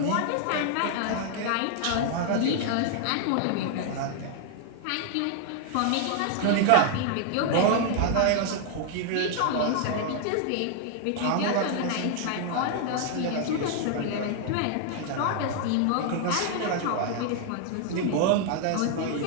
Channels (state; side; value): different; both; correlation 0.00